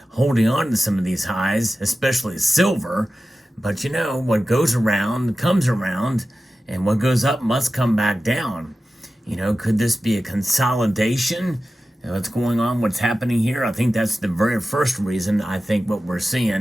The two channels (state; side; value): normal; both; correlation 0.94